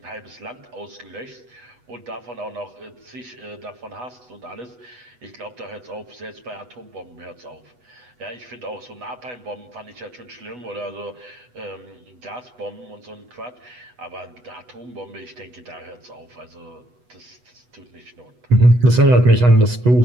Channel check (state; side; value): late; left; 8.1 ms